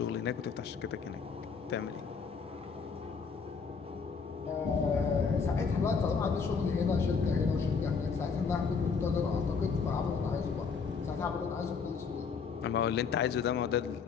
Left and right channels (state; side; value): quieter; right; 5.5 dB